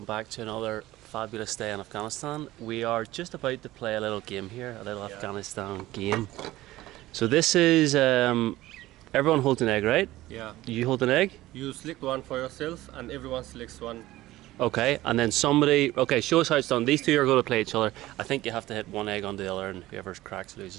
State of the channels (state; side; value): quieter; left; 16.7 dB